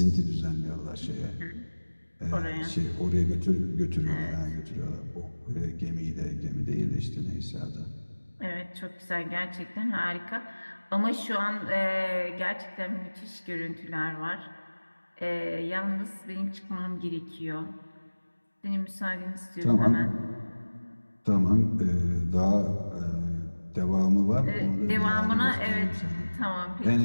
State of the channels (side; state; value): both; inverted; correlation -1.00